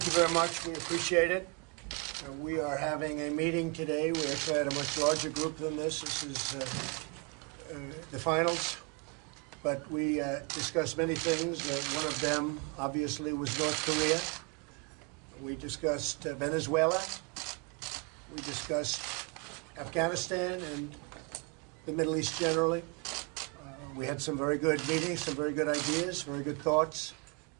you very much. We appreciate it. We are having a meeting today. We actually had a much larger group than this. This is the finals. But we discussed many things. One of them, obviously, was North Korea. We discussed Venezuela. We discussed Afghanistan and the Middle East generally. We had some very good meetings, some very good ideas, very good thoughts,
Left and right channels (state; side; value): quieter; left; 31.6 dB